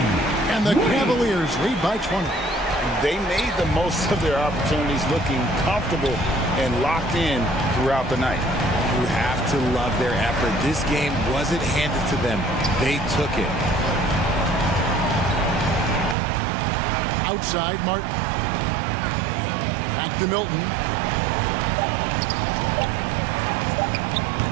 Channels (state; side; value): drops out; left; at 16.2 s